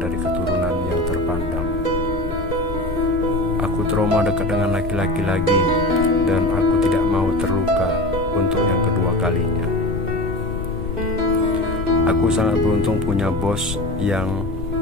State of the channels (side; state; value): left; noise; rumble, 7 dB below the sound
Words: keturunan yang terpandang. Aku trauma dekat dengan laki-laki lagi, dan aku tidak mau terluka untuk yang kedua kalinya. Aku sangat beruntung punya bos yang